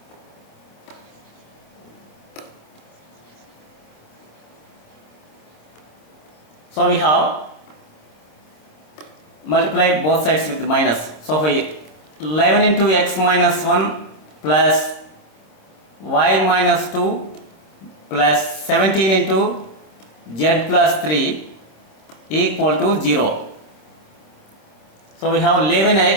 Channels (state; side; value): late; right; 26 ms